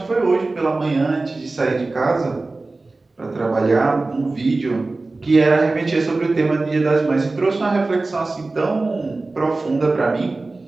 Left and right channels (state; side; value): quieter; left; 3.3 dB